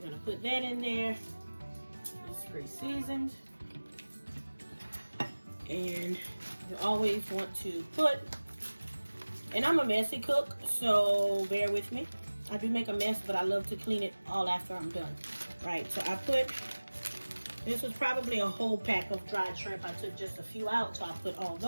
gonna put that in there. It's pre-seasoned. And you always want to put, and I'm a messy cook, so bear with me. I do make a mess, but I love to clean it all after I'm done. Right, so I put, this was probably a whole pack of dried shrimp. I took just a few out, so I put all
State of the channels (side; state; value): both; inverted; correlation -1.00